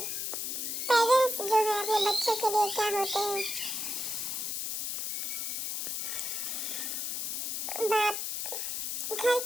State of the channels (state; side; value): noise; left; hiss, 2 dB below the sound